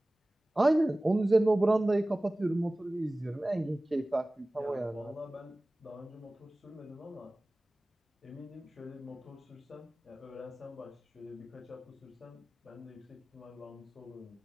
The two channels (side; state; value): both; normal; correlation 0.98